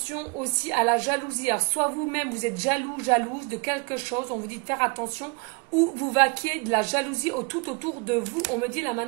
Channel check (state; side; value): quieter; left; 30.1 dB